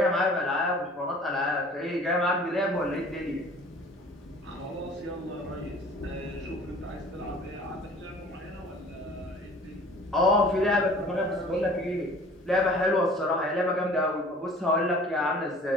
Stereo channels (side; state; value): both; normal; correlation 0.48